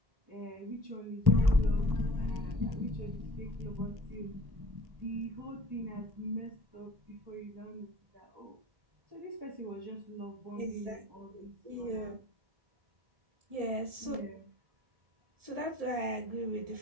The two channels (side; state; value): left; late; 1.7 ms